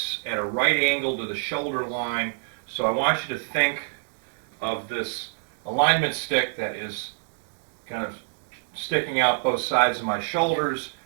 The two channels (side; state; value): left; silent; digital silence